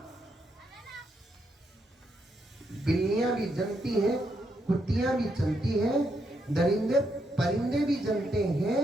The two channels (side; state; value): both; normal; correlation 0.79